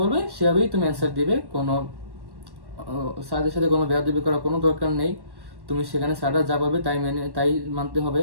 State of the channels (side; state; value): left; late; 1.1 ms